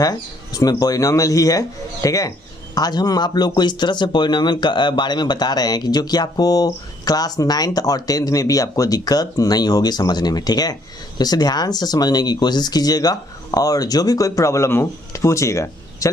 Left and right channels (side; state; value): both; normal; correlation 0.66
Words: उसमें पॉलिनोमियल ही है। ठीक है, आज हम आप लोग को इस तरह से पॉलिनोमियल के बारे में बता रहे हैं कि जो कि आपको क्लास 9th और 10th में भी आपको दिक्कत नहीं होगी समझने में। ठीक है, तो इसे ध्यान से समझने की कोशिश कीजिएगा और जो भी कोई प्रॉब्लम हो पूछिएगा।